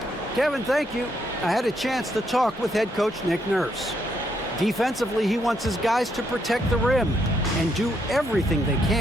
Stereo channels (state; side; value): normal; both; correlation 0.76